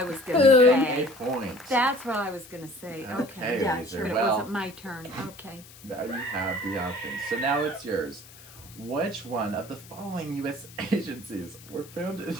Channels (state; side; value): noise; left; hiss, 20 dB below the sound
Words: was gonna Boom. say. A point. That's what I was gonna say. Okay, Okay. Yeah, Weezer. sure. But it Well, wasn't my turn. Okay. now you have the options. So now it's yours. Which one of the following U.S. agencies were founded in